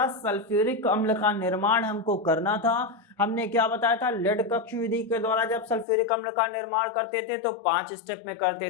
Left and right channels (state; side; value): drops out; right; at 5.9 s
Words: सल्फ्यूरिक अम्ल का निर्माण हमको करना था। हमने क्या बताया था? लेड कक्ष विधि के द्वारा जब सल्फ्यूरिक अम्ल का निर्माण करते थे तो 5 स्टेप में